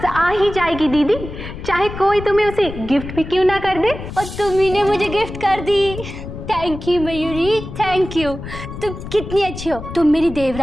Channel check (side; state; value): left; noise; rumble, 10 dB below the sound